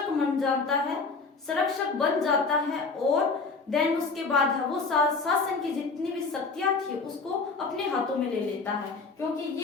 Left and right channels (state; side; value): quieter; right; 4.3 dB